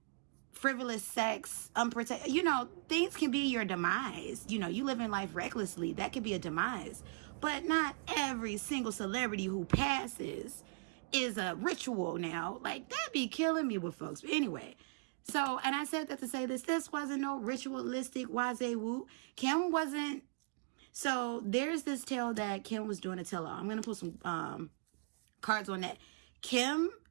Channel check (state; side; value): quieter; left; 36.3 dB